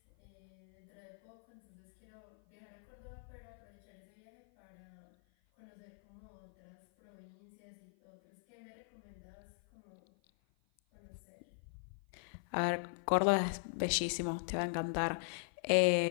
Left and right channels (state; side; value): silent; right; 51 dB below the other